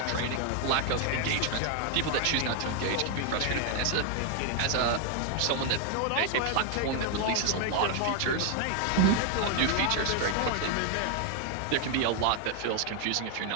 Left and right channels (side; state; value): both; different; correlation 0.00